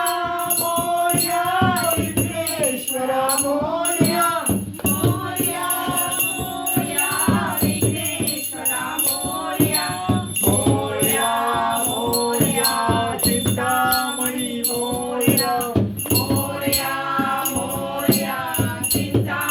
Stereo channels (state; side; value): identical; both; correlation 1.00